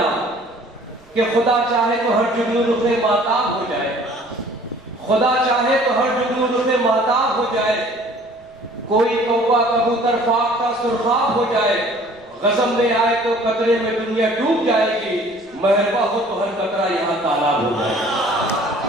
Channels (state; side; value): noise; right; rumble, 29 dB below the sound